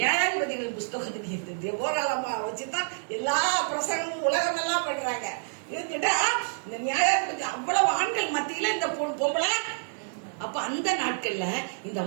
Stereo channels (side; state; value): left; silent; digital silence